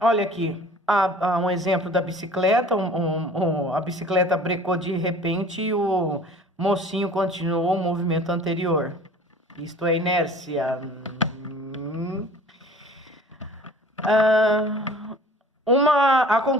aqui, há um exemplo da bicicleta, a bicicleta brecou de repente e o mocinho continuou o movimento anterior. Isto é inércia. A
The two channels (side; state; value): both; normal; correlation 0.47